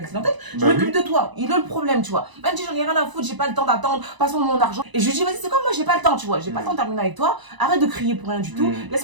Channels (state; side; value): late; left; 1.0 ms